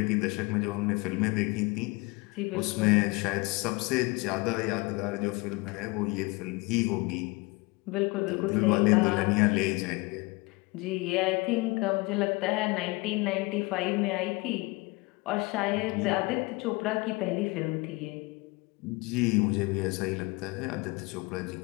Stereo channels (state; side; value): quieter; right; 25.1 dB